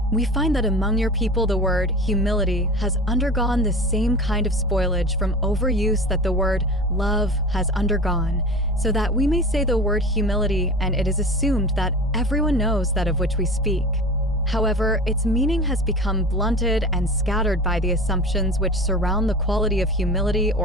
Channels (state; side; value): normal; both; correlation 0.34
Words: We find that among your people the word humility has undergone the same kind of spoilage from overuse that the word love has undergone, so that we may say the word humility and it is assumed that everyone knows that of which we speak. However, its meaning has become blunted and scattered by the assumptions which surround the quality of humility